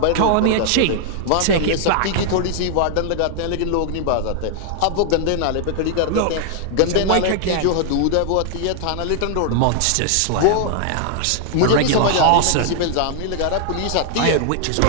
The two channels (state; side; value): different; both; correlation -0.01